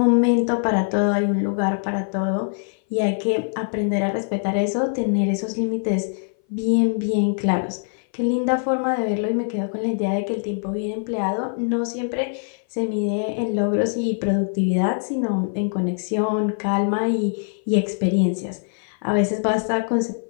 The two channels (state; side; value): silent; right; 58 dB below the other